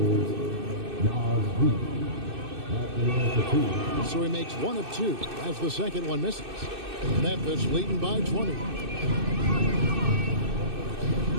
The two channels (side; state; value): left; late; 2.6 ms